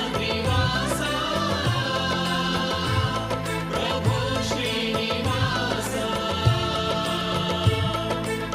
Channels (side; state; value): both; identical; correlation 1.00